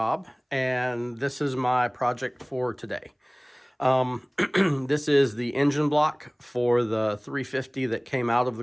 and this is my project for today. This is the engine block for the 350 that came out of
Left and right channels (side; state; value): both; identical; correlation 1.00